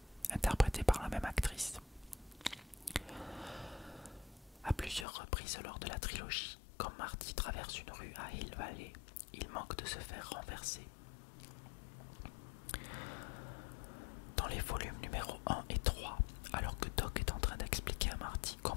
interprétée par la même actrice. À plusieurs reprises lors de la trilogie, quand Marty traverse une rue à Hill Valley, il manque de se faire renverser. Dans les volumes numéro 1 et 3, alors que Doc est en train d'expliquer à Marty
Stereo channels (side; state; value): right; drops out; at 5.1 s